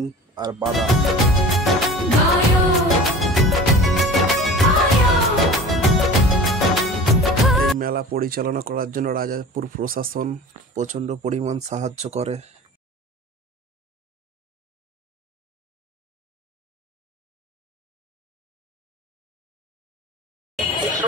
আর বাদাম। এই মেলা পরিচালনা করার জন্য রাজাপুর প্রশাসন প্রচন্ড পরিমাণ সাহায্য করে।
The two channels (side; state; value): both; normal; correlation 0.39